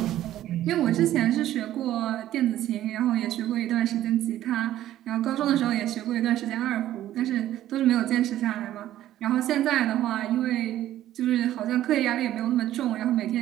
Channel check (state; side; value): quieter; left; 13.1 dB